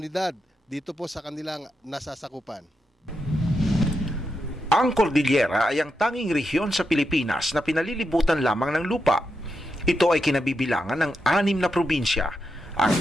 dito po sa kanilang nasasakupan. Ang Cordillera ay ang tanging rehiyon sa Pilipinas na pinalilibutan lamang ng lupa. Ito ay kinabibilangan ng 6 na probinsya, ang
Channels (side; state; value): both; normal; correlation 0.86